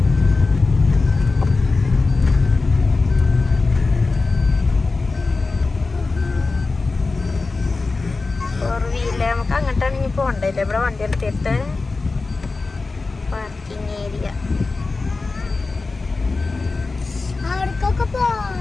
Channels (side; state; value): right; quieter; 3.8 dB